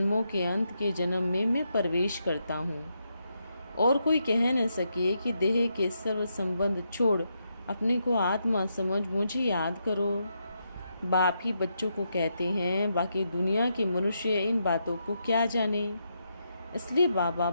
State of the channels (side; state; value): both; inverted; correlation -0.82